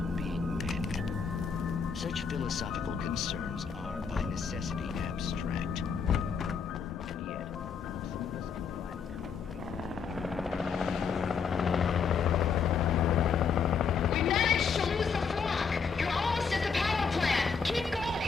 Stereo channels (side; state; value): right; quieter; 6.0 dB